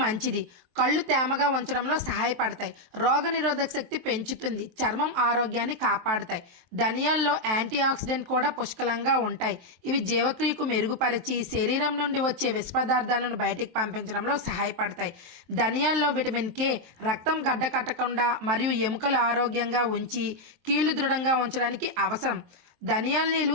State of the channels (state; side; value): late; left; 23 ms